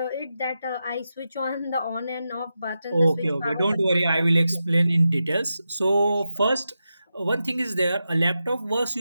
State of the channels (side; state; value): both; inverted; correlation -0.89